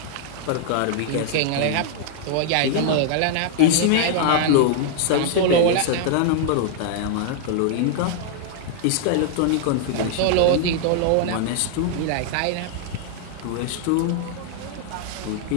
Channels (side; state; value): both; different; correlation -0.01